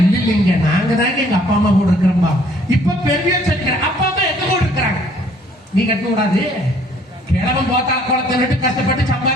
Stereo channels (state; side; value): normal; both; correlation 0.60